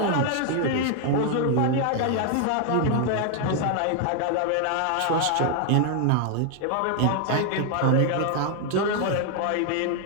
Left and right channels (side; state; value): both; different; correlation 0.00